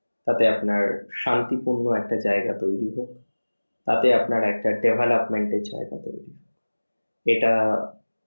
তাতে আপনার শান্তিপূর্ণ একটা জায়গা তৈরি হোক, তাতে আপনার একটা ডেভেলপমেন্টের জায়গা তৈরি হোক। এটা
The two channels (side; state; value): both; inverted; correlation -1.00